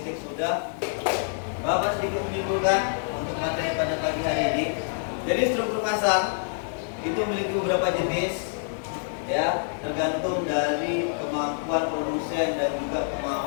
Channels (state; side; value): silent; right; 60 dB below the other